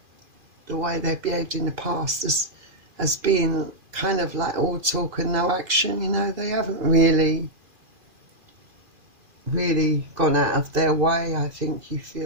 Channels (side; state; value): left; late; 2.4 ms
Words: the way they've behaved in the past as being kind of like all talk and no action. You know, they haven't really gone out of their way, I think you